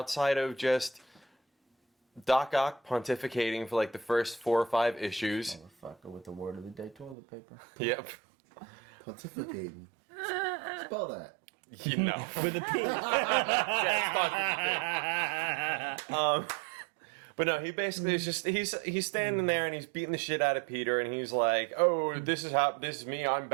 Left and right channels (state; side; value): drops out; left; at 7.2 s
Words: of just Doc Ock pontificating for like the first 4 or 5 issues. Motherfucker with the word of the day toilet paper. Yep. Pontificating. Spell that. You know. With a P. Yeah, it's not. But no, he basically is just he's standing there and he's beating the shit out of Peter, and he's like, "Oh, this is me. I'm